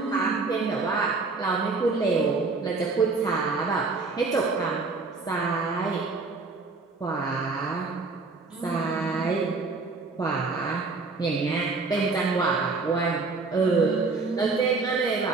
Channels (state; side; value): quieter; left; 4.0 dB